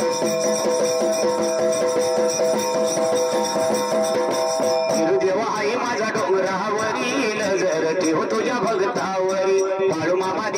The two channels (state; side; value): identical; both; correlation 1.00